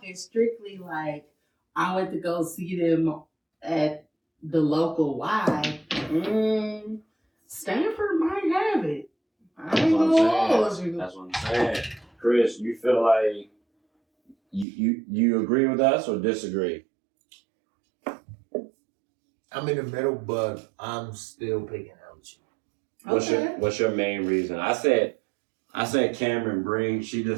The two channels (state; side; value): drops out; left; at 14.7 s